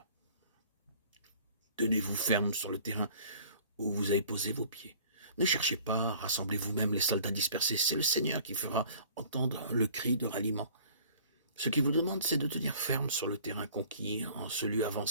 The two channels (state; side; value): inverted; both; correlation -0.50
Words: Tenez-vous ferme sur le terrain où vous avez posé vos pieds. Ne cherchez pas, rassemblez vous-même les soldats dispersés. C'est le Seigneur qui fera entendre le cri de ralliement. Ce qu'il vous demande, c'est de tenir ferme sur le terrain conquis, en ce lieu